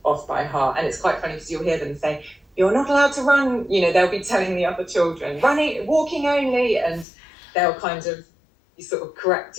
off by heart. And it's quite funny because you'll hear them say, you're not allowed to run, they'll be telling the other children, walking only, and they'll kind of you sort of correct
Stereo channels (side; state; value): right; drops out; at 7.1 s